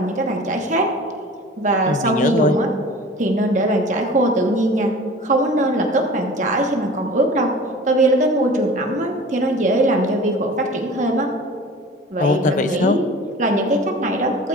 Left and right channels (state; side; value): normal; both; correlation 0.41